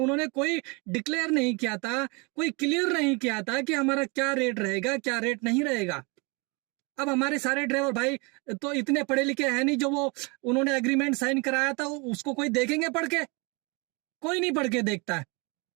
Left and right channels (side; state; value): left; quieter; 29.7 dB